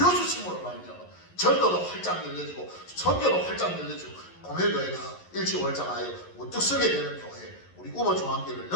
말미암아 전도도 활짝 열려지고 선교도 활짝 열려지고 고매교회가 일치월장하여 우뚝 서게 되는 교회, 우리 우모 중앙교회를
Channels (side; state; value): right; late; 11 ms